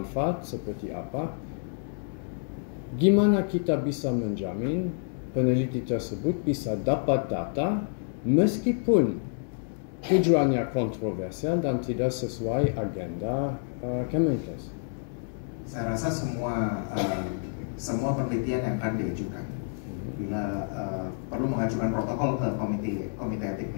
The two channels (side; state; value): right; silent; digital silence